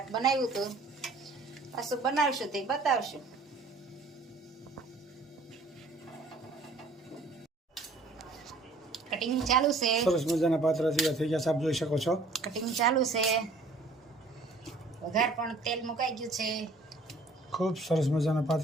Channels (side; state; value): left; quieter; 3.2 dB